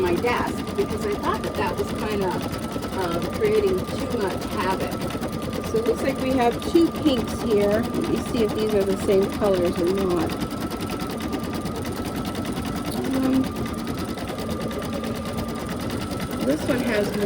desk, because I thought that was kind of creating too much havoc. So it looks like we have two pinks here. Let me see if these are the same colors or not. This one has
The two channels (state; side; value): identical; both; correlation 1.00